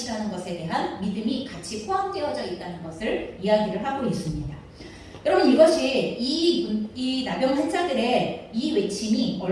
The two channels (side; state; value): both; identical; correlation 1.00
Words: 것에 대한 믿음이 같이 포함되어져 있다는 것을 이야기를 하고 있습니다. 여러분 이것이 이 나병 환자들의 이 외침이